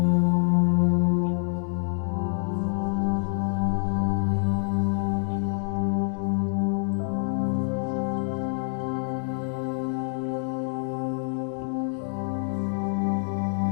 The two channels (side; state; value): right; silent; 61 dB below the other